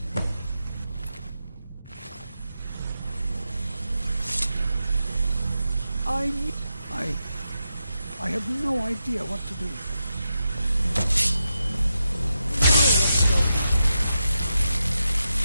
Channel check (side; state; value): both; inverted; correlation -0.87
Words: I have no idea what to do.